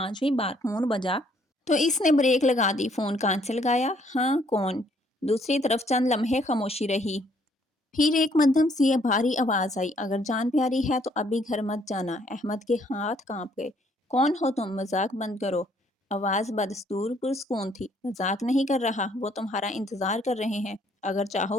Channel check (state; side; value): normal; both; correlation 0.66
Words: بار فون بجا تو اس نے بریک لگا دی۔ فون کان سے لگایا۔ ہاں کون؟ دوسری طرف چند لمحے خاموشی رہی، پھر ایک مدھم سی بھاری آواز آئی، اگر جان پیاری ہے تو ابھی گھر مت جانا۔ احمد کے ہاتھ کانپ گئے۔ کون ہو تم؟ مذاق بند کرو۔ آواز بدستور پرسکون تھی۔ مذاق نہیں کر رہا، وہ تمہارا انتظار کر رہے ہیں، اگر